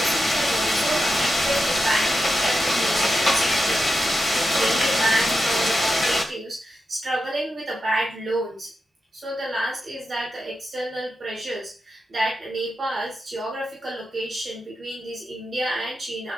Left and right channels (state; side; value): normal; both; correlation 0.89